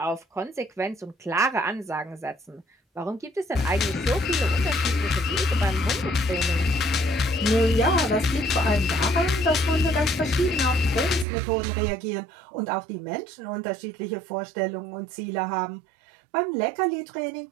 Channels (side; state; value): left; drops out; at 11.2 s